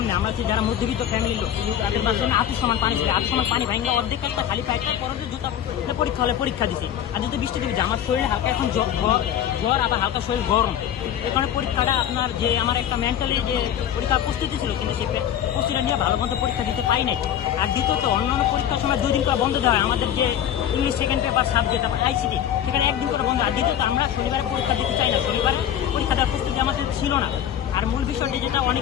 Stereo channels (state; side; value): quieter; right; 10.2 dB